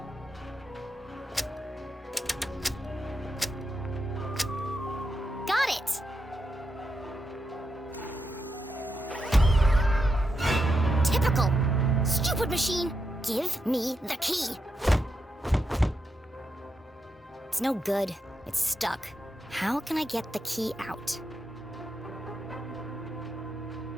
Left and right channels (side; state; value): both; normal; correlation 0.85